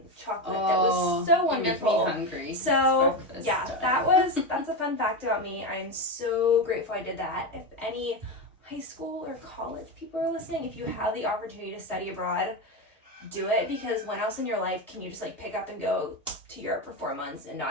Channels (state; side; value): normal; both; correlation 0.15